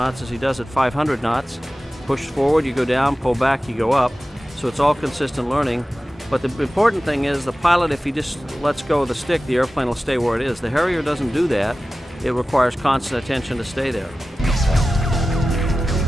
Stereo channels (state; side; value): normal; both; correlation 0.95